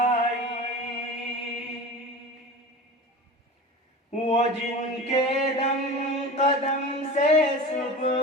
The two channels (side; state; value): both; normal; correlation 0.33